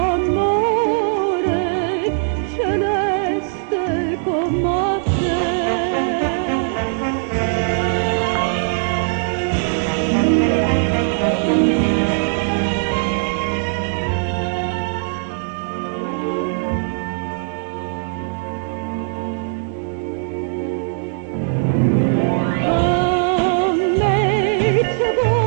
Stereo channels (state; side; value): silent; left; 66 dB below the other